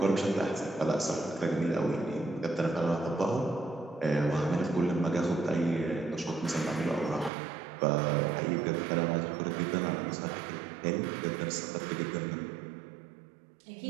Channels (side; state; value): left; drops out; at 7.3 s